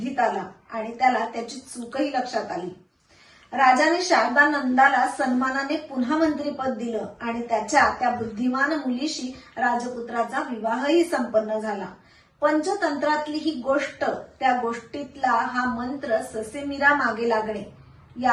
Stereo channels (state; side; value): identical; both; correlation 1.00